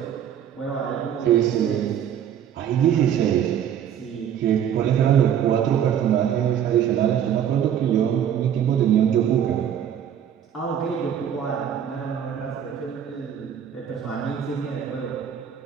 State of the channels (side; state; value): left; quieter; 9.3 dB